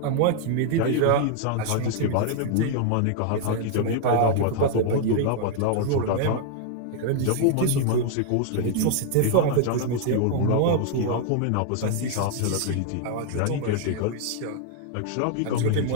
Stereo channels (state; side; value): different; both; correlation 0.00